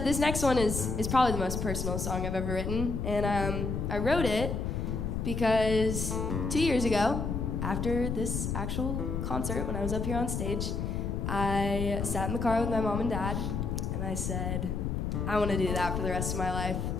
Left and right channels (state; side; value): noise; left; rumble, 2 dB below the sound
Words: this next one is probably the most personal song I've ever written, and I wrote it because 2 years ago, after this actual concert, when I was up here on stage, I sat in the car with my mom and dad, and I said, I want to do that for the rest of my life.